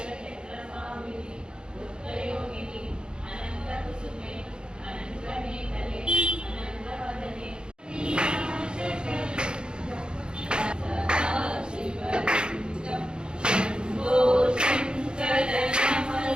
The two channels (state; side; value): late; left; 0.050 ms